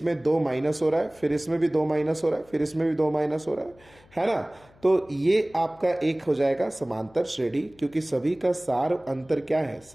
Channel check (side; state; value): left; noise; hum, 28 dB below the sound